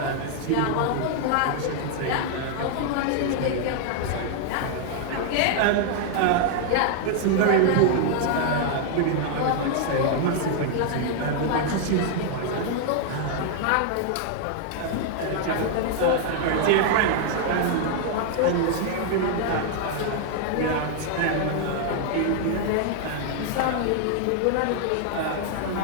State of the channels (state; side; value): different; both; correlation 0.00